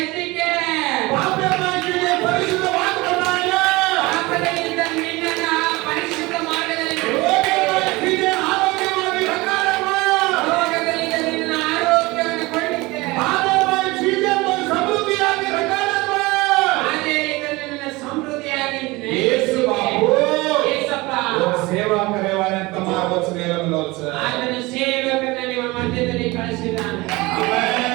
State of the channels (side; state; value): left; quieter; 22.2 dB